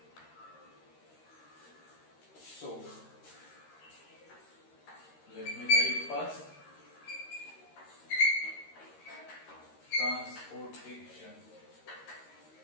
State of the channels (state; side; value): late; right; 13 ms